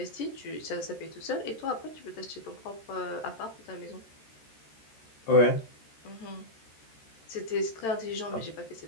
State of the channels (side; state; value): right; late; 13 ms